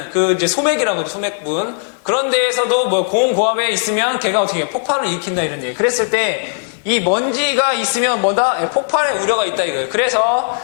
그 이제 소맥이라고 하죠. 소맥분. 그런 데에서도 뭐 고온고압에 있으면 걔가 어떻게 해요? 폭발을 일으킨다 이런 얘기. 그랬을 때 이 먼지가 있으면 뭐다? 폭발의 우려가 있다 이거예요. 그래서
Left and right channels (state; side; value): silent; right; digital silence